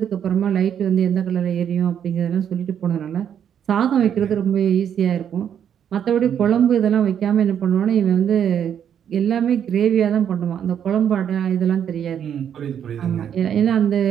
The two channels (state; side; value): quieter; left; 8.9 dB